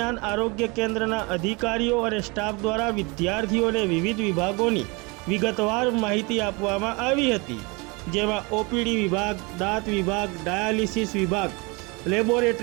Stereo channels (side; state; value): left; quieter; 27.8 dB